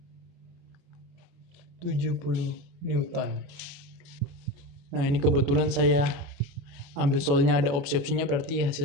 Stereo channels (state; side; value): late; left; 28 ms